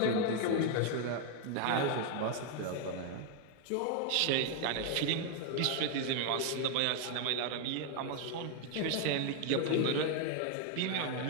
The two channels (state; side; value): different; both; correlation 0.01